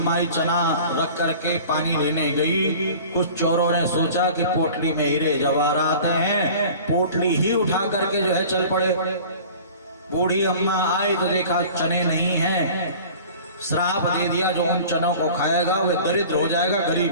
चना रख करके पानी लेने गई। कुछ चोरों ने सोचा कि पोटली में हीरे जवाहरात हैं, पोटली ही उठा करके जो है चल पड़े। बूढ़ी अम्मा आई तो देखा चने नहीं हैं, श्राप दे दिया जो उन चनों को खाएगा वह दरिद्र हो जाएगा,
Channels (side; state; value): both; inverted; correlation -0.43